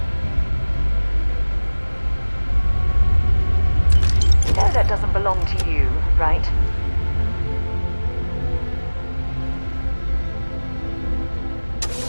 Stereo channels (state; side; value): inverted; both; correlation -1.00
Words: You know that doesn't belong to you, right?